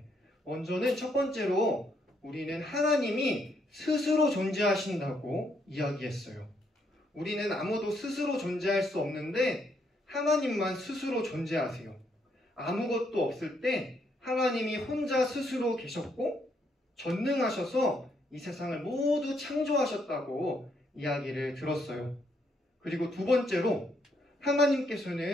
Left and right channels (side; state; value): both; normal; correlation 0.74